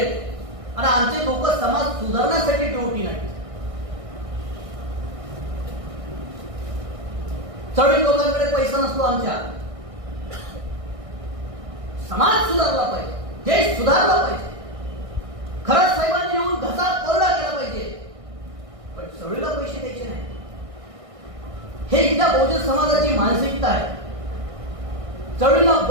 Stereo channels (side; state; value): left; late; 1.6 ms